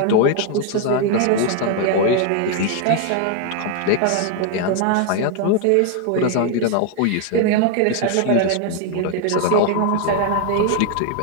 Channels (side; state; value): both; different; correlation 0.01